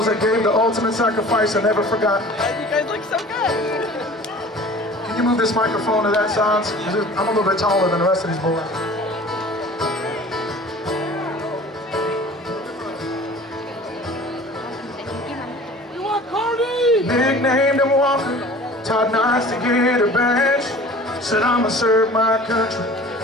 that gave the ultimate sacrifice are never forgotten. You guys look so good. Can you move this microphone to that side? I'm a little bit taller than the rest of these boys. You want Cardi? Nicknamed him Walker, taught nights to get a badge. Said I'ma serve my country,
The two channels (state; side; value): normal; both; correlation 0.44